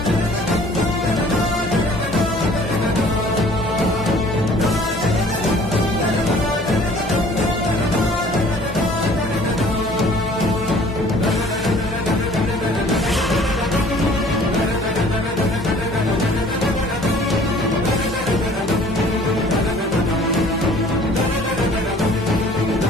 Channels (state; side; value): normal; both; correlation 0.52